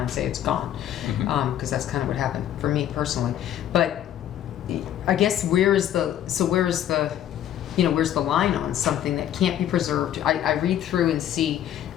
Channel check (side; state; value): right; quieter; 11.1 dB